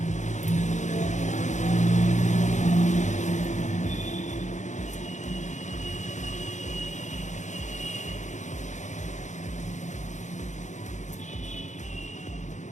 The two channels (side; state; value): right; late; 0.35 ms